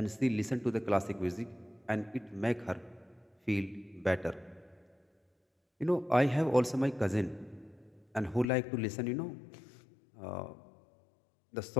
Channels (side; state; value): right; drops out; at 8.5 s